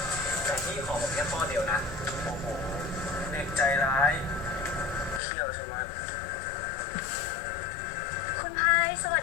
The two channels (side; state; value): right; drops out; at 5.2 s